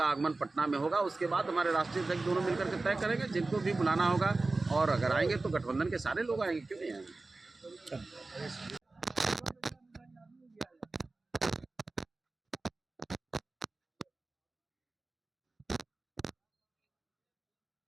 आगमन पटना में होगा। उसके बाद हमारे राष्ट्रीय अध्यक्ष दोनों मिलकर के तय करेंगे जिनको भी बुलाना होगा और अगर आएंगे तो गठबंधन के सारे लोग आएंगे, क्यों नहीं आएंगे।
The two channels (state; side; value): quieter; left; 3.4 dB